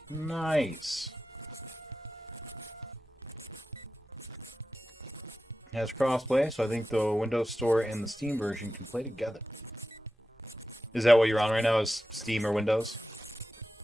Nice. It has crossplay, so I think the Windows Store and the Steam version can play together. Is that what you're on right now? Is Steam or Windows?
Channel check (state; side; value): normal; both; correlation 0.92